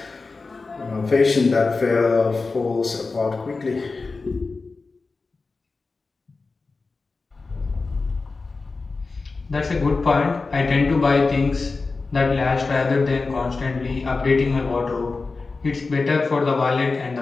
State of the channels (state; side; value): quieter; right; 4.0 dB